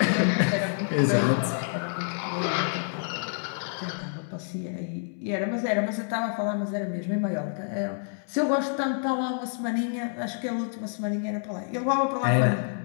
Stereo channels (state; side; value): silent; right; 60 dB below the other